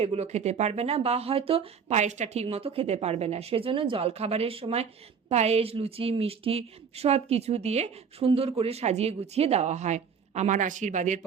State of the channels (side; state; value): left; quieter; 6.5 dB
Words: খেতে পারবে না, বা হয়তো পায়েসটা ঠিক মতো খেতে পারবে না। সেজন্য জলখাবারের সময় পায়েস, লুচি, মিষ্টি সব কিছু দিয়ে সুন্দর করে সাজিয়ে গুছিয়ে দেওয়া হয়। আমার আশীর্বাদের